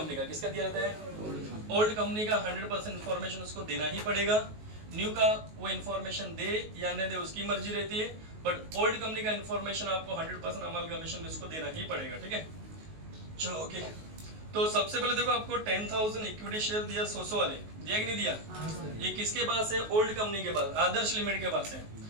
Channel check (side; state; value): left; late; 19 ms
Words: का। किसका दिया रहता है? ओल्ड कंपनी का 100% इन्फॉर्मेशन उसको देना ही पड़ेगा। न्यू का वो इन्फॉर्मेशन दे या न दे उसकी मर्जी रहती है, बट ओल्ड कंपनी का इन्फॉर्मेशन आपको 100% अमलगमेशन में उसको देना ही पड़ेगा, ठीक है। चलो ओके, तो सबसे पहले देखो आपको 10,000 इक्विटी शेयर दिया 100 वाले, दिया कि नहीं दिया? ये किसके पास है? ओल्ड कंपनी के पास, आदर्श लिमिट के पास है।